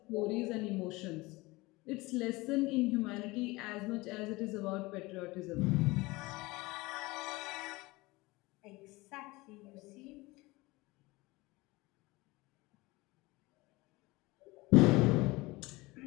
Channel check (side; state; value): right; quieter; 22.2 dB